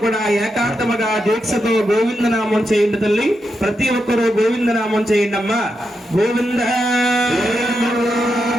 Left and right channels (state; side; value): normal; both; correlation 0.85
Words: ఏకాంతముగా దీక్షతో గోవిందనామం చేయండి తల్లి. ప్రతి ఒక్కరూ గోవిందనామం చేయండి అమ్మా. గోవింద